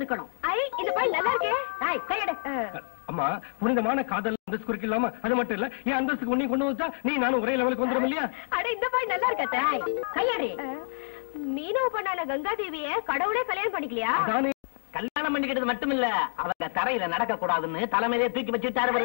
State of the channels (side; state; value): right; silent; digital silence